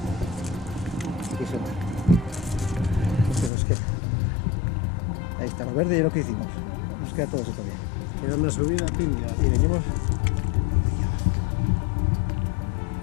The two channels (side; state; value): right; drops out; at 3.5 s